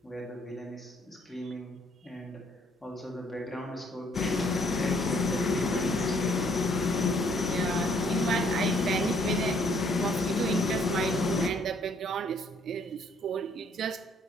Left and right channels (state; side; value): normal; both; correlation 0.65